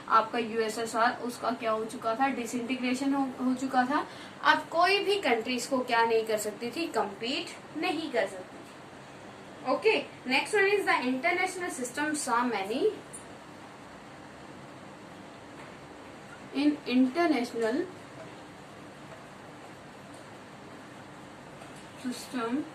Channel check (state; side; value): identical; both; correlation 1.00